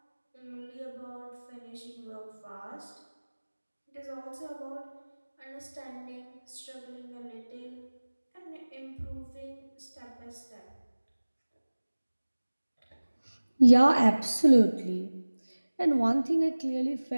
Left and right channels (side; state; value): both; inverted; correlation -1.00